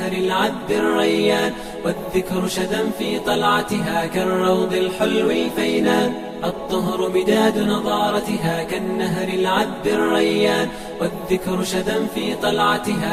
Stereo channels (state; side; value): identical; both; correlation 1.00